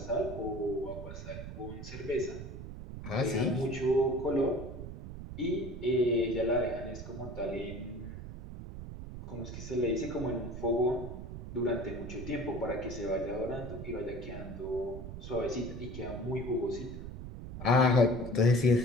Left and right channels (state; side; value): noise; right; rumble, 9 dB below the sound